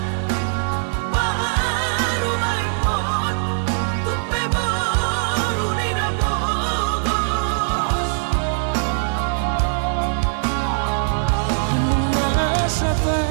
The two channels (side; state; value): left; silent; digital silence